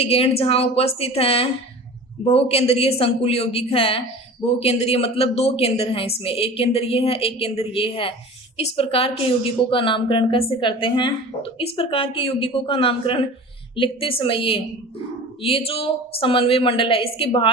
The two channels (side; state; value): both; normal; correlation 0.38